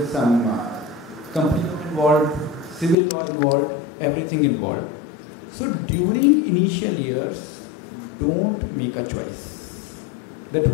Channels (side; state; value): right; drops out; at 3.0 s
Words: some company involved, civil law involved, everything involved. So during initial years, don't make a choice that